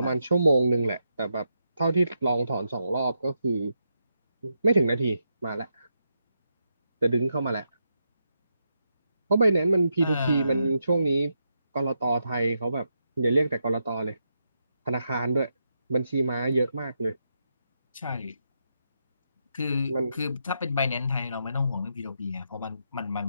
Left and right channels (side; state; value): both; inverted; correlation -0.83